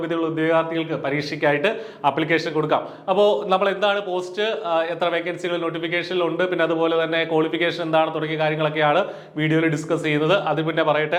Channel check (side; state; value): both; identical; correlation 1.00